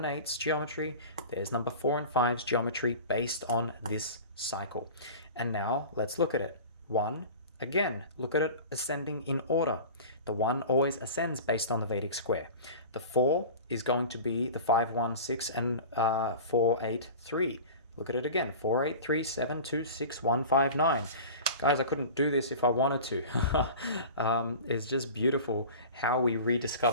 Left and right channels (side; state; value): both; inverted; correlation -0.36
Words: 8's geometry, there's number 4 and 5's geometry based on this cycle. And now let's look at it. 1, again, look at it ascending in order. The 1 always ascends based on the Vedic square. The 4 is going to be the 5, 1, 6, and 4, 8, 3. Look at it again. 4, 8, 3, 7, 2, 6, 1, 5, 9. Guys, I couldn't do this if I wanted to. It's just beautiful how we